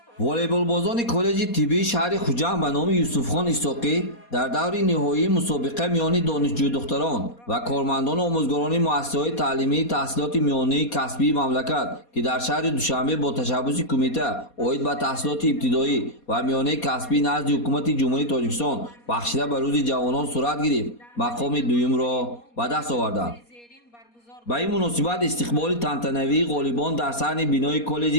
волейболбозони коллеҷи тиббии шаҳри хуҷанд ба номи Юсуфхон Исоқӣ дар даври ниҳоии мусобиқа миёни донишҷӯ-духтарон ва кормандони омӯзгорони муассисаҳои таълимии таҳсилоти миёнии касбии мамлакат, ки дар шаҳри Душанбе бо ташаббуси Кумита оид ба таҳсилоти ибтидоӣ ва миёнаи касбӣ назди ҳукумати Ҷумҳурии Тоҷикистон бахшида ба Рӯзи ҷавонон сурат гирифт, мақоми дуюмро ба даст оварданд. ба ин муносибат истиқболи тантанавии ғолибон дар саҳни бинои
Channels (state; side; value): late; right; 4.2 ms